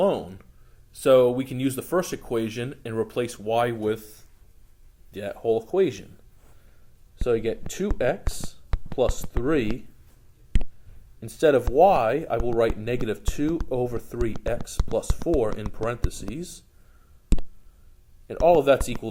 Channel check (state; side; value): identical; both; correlation 1.00